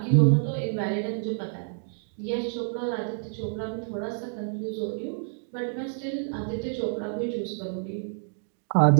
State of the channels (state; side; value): silent; left; digital silence